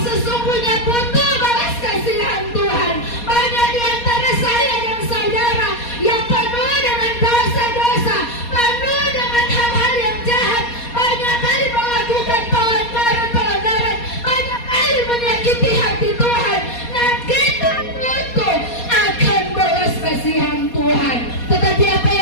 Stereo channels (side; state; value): right; late; 4.2 ms